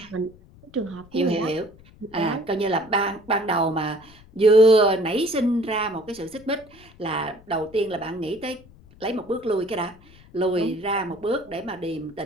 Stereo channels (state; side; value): noise; left; rumble, 24 dB below the sound